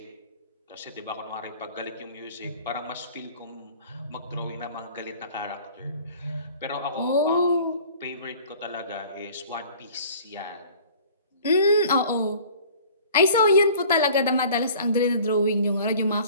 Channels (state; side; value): inverted; both; correlation -0.47